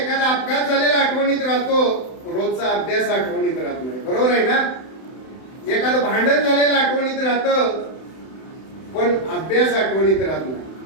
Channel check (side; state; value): right; late; 31 ms